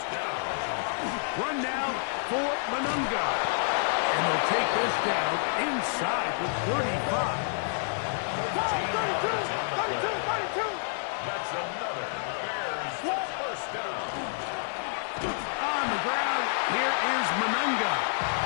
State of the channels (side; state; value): right; silent; 59 dB below the other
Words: down. Run now for Manunga. And they'll take this down inside the 35. 32. That's another Bears first down. On the ground, here is Manunga.